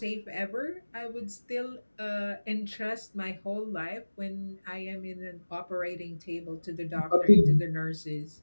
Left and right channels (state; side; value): inverted; both; correlation -1.00